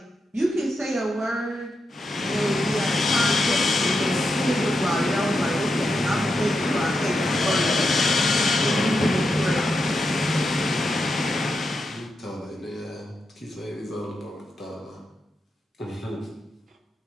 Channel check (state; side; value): normal; both; correlation 0.85